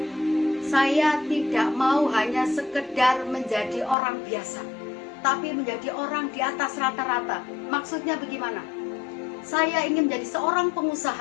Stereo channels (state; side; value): drops out; right; at 4.0 s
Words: saya tidak mau hanya sekedar menjadi orang biasa, tapi menjadi orang di atas rata-rata. Maksudnya bagaimana? Saya ingin menjadi seorang